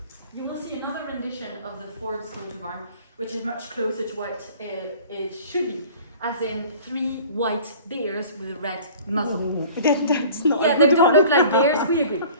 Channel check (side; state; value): both; inverted; correlation -0.47